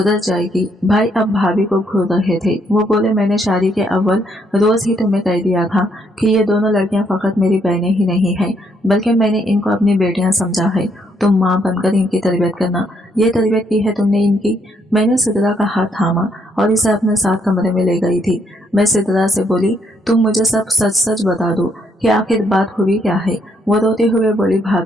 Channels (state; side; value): normal; both; correlation 0.72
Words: जाएगी। भाई अब भाभी को घूर रहे थे। वो बोले, मैंने शादी के अव्वल रोज ही तुम्हें कह दिया था कि ये दोनों लड़कियां फकत मेरी बहनें ही नहीं हैं, बल्कि मैंने इनको अपनी बेटियां समझा है। तुम माँ बनकर इनकी तरबियत करना। ये तरबियत की है तुमने इनकी। मैंने सिद्रा का हाथ थामा और इसे अपने साथ कमरे में ले गई थी। मैं सिद्रा से बोली, तुम मुझे सब सच सच बता दो कि आखिर बात हुई क्या है। वो रोते हुए बोली,